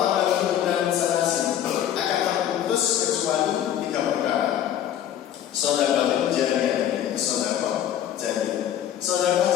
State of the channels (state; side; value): quieter; right; 10.6 dB